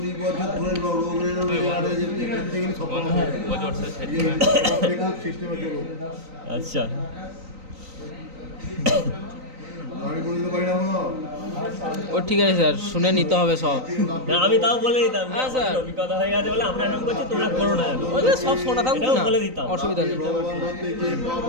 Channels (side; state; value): left; late; 3.9 ms